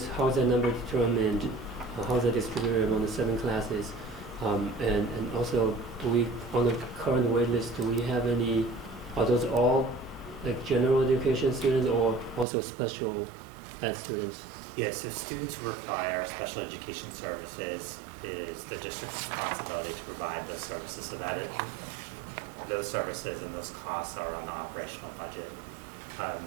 how is that number determined? How is that distributed among the 7 classes? And also, do we, on the current wait list, do we have any, are those all like general education students or also special ed students? Yes, so students who require special education services is the district's responsibility to provide those services, so that those services and those costs are on the operational budget.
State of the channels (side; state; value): left; drops out; at 12.5 s